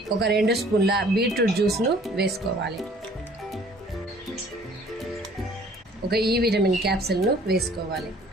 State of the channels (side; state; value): both; normal; correlation 0.55